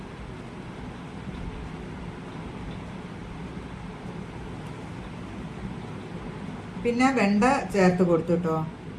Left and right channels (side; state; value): both; identical; correlation 1.00